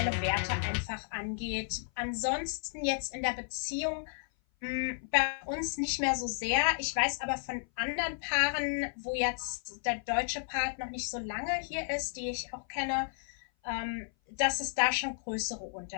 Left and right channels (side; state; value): right; silent; 55 dB below the other